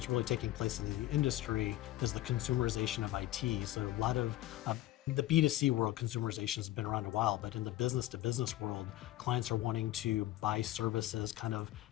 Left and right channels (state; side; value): quieter; right; 15.3 dB